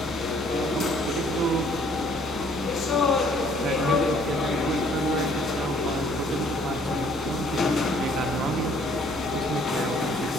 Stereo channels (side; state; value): both; normal; correlation 0.60